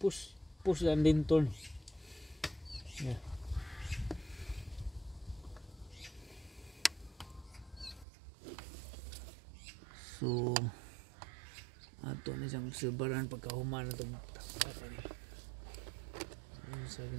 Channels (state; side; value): drops out; left; at 8.1 s